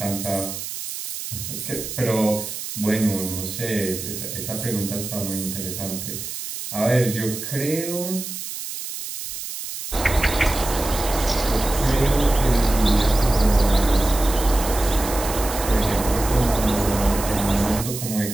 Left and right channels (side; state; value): right; noise; hiss, 7 dB below the sound